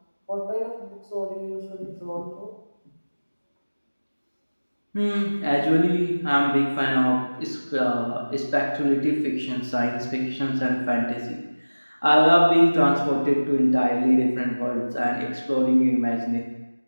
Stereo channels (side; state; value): both; inverted; correlation -1.00